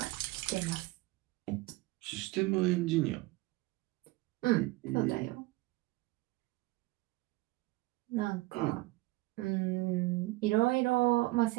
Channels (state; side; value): quieter; left; 21.0 dB